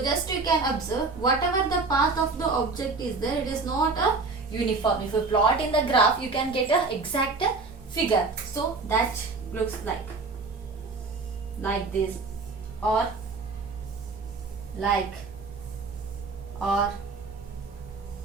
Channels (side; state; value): left; quieter; 4.0 dB